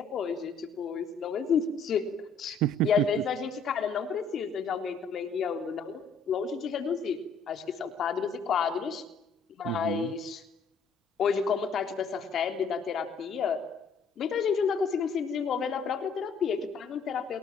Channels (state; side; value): quieter; right; 4.3 dB